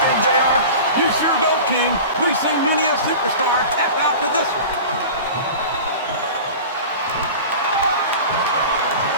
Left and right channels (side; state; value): both; inverted; correlation -0.35